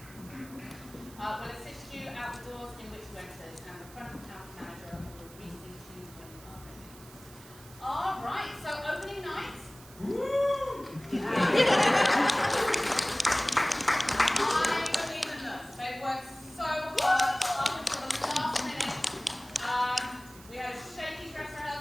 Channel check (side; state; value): right; noise; hiss, 20 dB below the sound